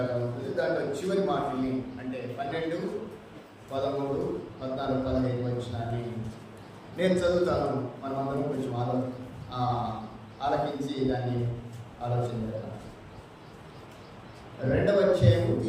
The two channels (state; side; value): identical; both; correlation 1.00